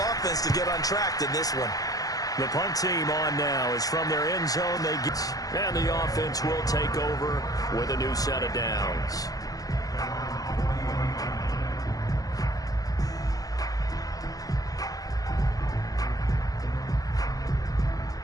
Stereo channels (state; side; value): late; right; 0.17 ms